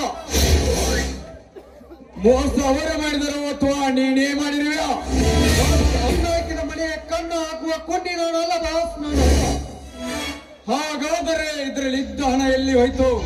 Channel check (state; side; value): identical; both; correlation 1.00